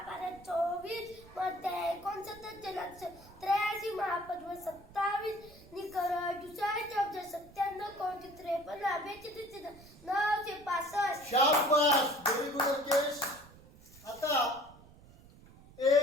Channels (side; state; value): right; noise; rumble, 22 dB below the sound